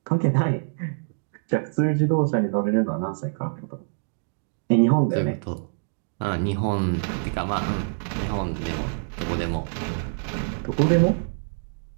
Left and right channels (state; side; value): silent; left; digital silence